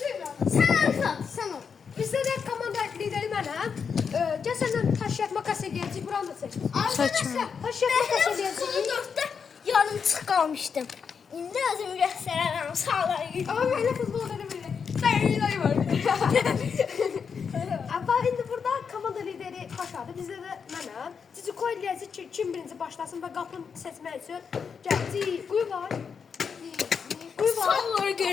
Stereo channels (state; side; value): quieter; right; 6.2 dB